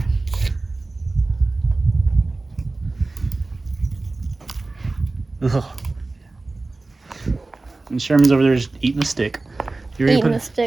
Ugh. And Sherman's over there just eating a stick. You ready, Eating a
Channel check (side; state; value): left; quieter; 3.3 dB